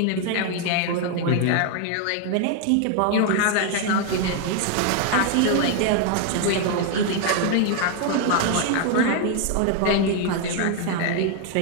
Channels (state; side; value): different; both; correlation 0.00